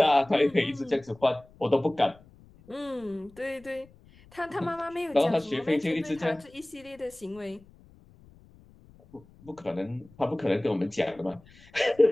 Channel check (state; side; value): noise; left; rumble, 26 dB below the sound